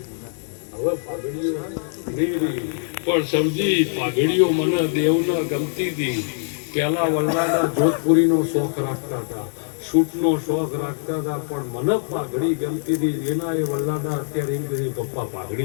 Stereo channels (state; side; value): silent; right; digital silence